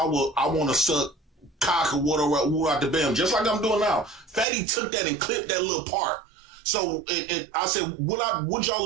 to suck cock or whatever out the bam, just like I'm doing now, Fatty took that and clipped that little part. So and I said, would y'all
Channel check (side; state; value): left; drops out; at 4.5 s